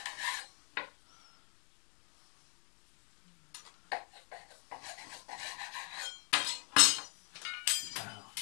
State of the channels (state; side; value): quieter; right; 38.1 dB